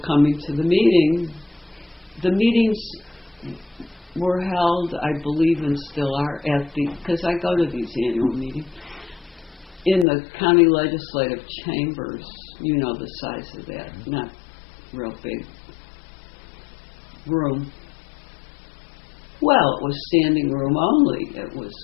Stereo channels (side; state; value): right; drops out; at 10.1 s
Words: coming to the meeting, the meetings were held, I believe, and still are, because I go to these annual meetings, in the county legislative chambers. You know the size of that, not real big room. Well, it was standing room only. It was,